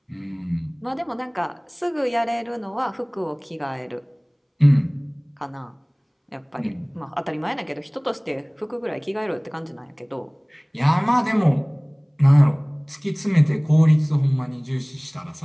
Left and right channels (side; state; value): both; identical; correlation 1.00